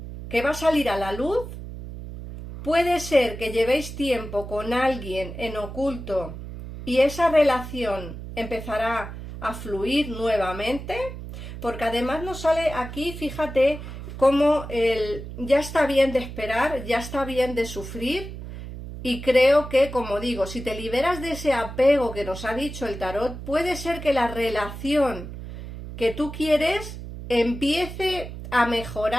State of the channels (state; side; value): noise; right; hum, 10 dB below the sound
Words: que va a salir a la luz. Puede ser que llevéis tiempo con alguien en oculto y esa relación empezará a fluir nuevamente, porque además nos sale aquí, fíjate, como ya está bien de esperar, ya está bien de sufrir. Y creo que, como digo, si te liberas de ese apego que nos ha dicho el tarot, puede ser que la relación que tú quieres empiece a